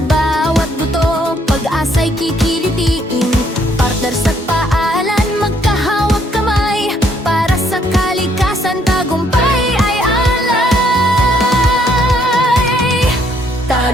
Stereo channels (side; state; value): both; normal; correlation 0.68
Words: buto, pag-asa'y kikilitiin. Partners at paalan, magkahawag kamay. Para sa kalikasan, tagumpay ay alay.